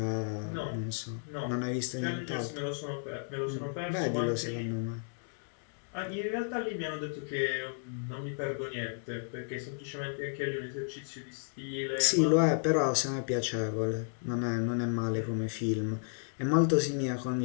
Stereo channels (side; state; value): right; silent; digital silence